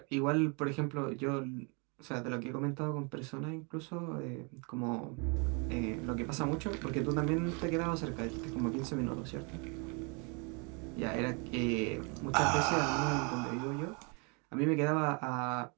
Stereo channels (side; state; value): left; quieter; 33.6 dB